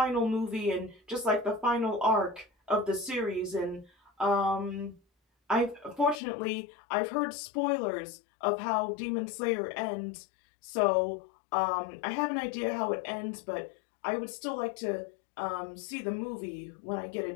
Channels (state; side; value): drops out; right; at 6.2 s